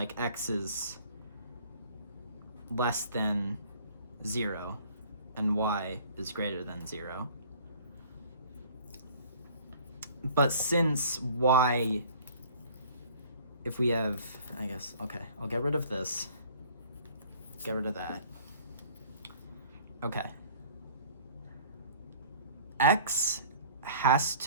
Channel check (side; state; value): both; inverted; correlation -0.51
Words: x is less than 0 and y is greater than 0. But since y, if we have, I guess, okay, I'll get rid of this, get rid of that. Okay. X has